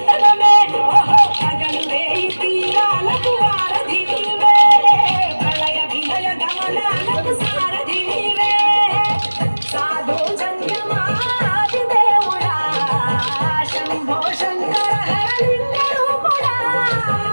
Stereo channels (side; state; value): both; inverted; correlation -1.00